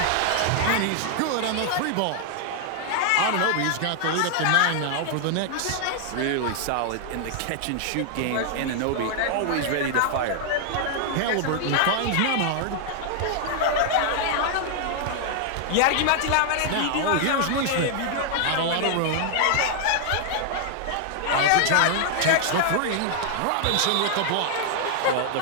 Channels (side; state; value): both; different; correlation 0.00